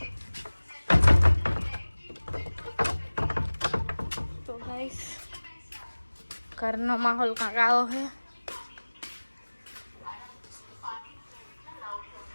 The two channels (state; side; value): inverted; both; correlation -1.00